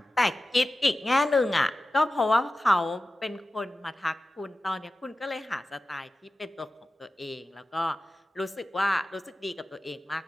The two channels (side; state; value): both; normal; correlation 0.94